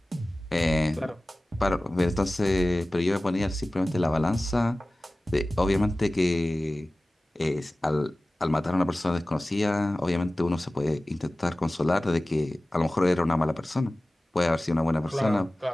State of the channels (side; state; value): both; normal; correlation 0.97